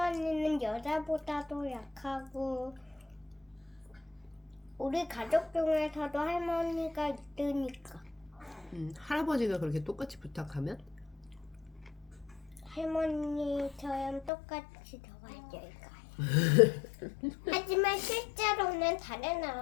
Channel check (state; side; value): drops out; right; at 14.3 s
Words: 여자보다도 약하고 우리 가족 중에서도 할머니가 있으니까. 할아버지가 그렇게 똑같이 부탁하면? 할머니처럼 똑같이 도와줄까요? 하지만 실제로는 다른